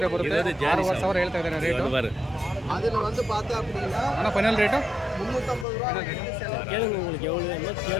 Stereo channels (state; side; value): drops out; right; at 5.7 s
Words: ಬರುತ್ತೆ. 6,000 ಹೇಳ್ತಾ ಇದ್ದಾರೆ ರೇಟು. அதில் வந்து பார்த்தா அப்படின்னா ಅಣ್ಣ ಫೈನಲ್ ರೇಟು 350 ரூபா. கேளுங்க உங்களுக்கு எவ்வளோ வேணுமோ